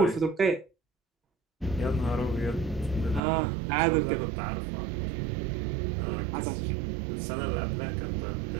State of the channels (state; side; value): drops out; left; at 3.2 s